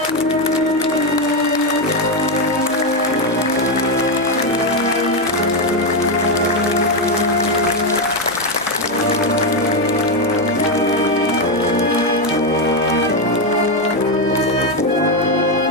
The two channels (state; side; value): noise; right; hum, 26 dB below the sound